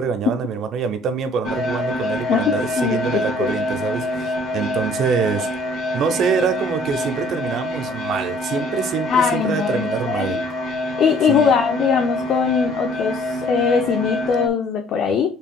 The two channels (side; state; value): both; normal; correlation 0.57